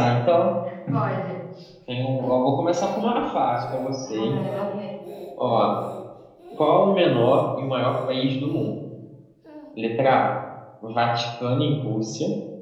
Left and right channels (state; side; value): identical; both; correlation 1.00